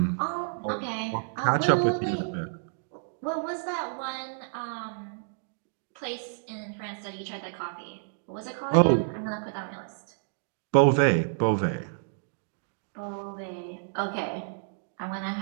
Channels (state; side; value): silent; left; digital silence